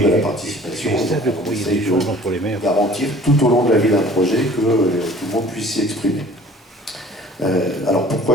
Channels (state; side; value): normal; both; correlation 0.49